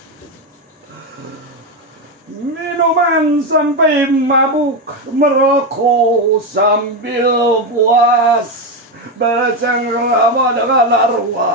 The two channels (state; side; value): normal; both; correlation 0.10